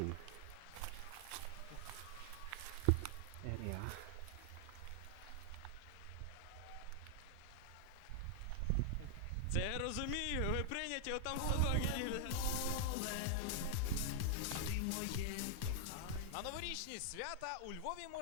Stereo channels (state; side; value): different; both; correlation 0.00